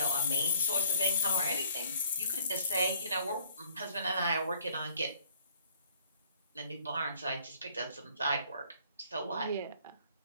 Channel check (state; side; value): inverted; both; correlation -0.57